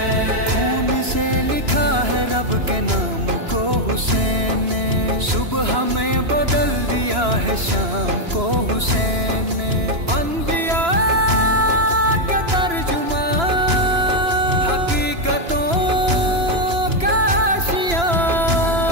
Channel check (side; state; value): left; late; 2.9 ms